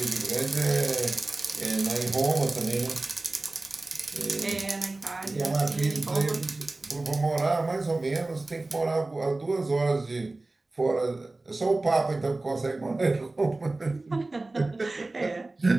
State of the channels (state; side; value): quieter; left; 3.1 dB